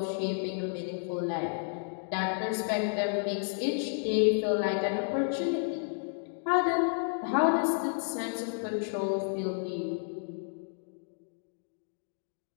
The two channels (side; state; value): right; silent; digital silence